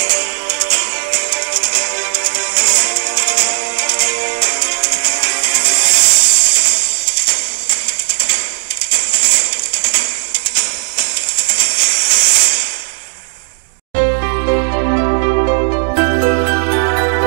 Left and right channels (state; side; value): silent; left; digital silence